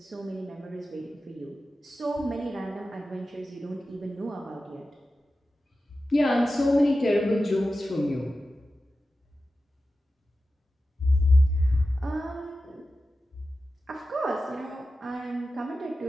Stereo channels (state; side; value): normal; both; correlation 0.93